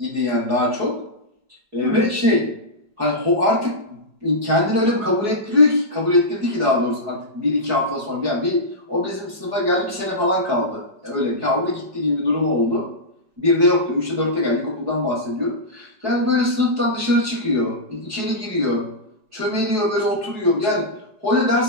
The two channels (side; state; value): left; late; 4.7 ms